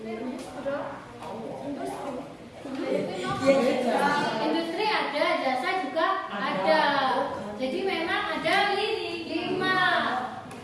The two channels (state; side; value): identical; both; correlation 1.00